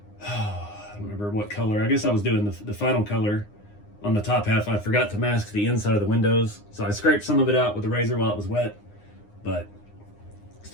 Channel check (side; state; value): right; late; 9.7 ms